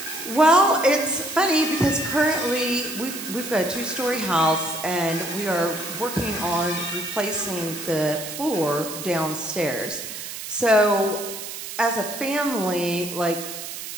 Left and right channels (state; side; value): noise; right; hiss, 9 dB below the sound